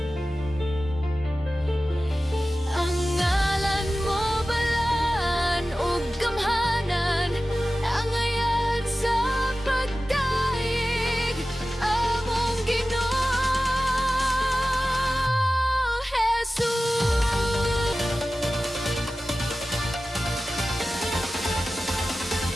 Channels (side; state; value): both; normal; correlation 0.95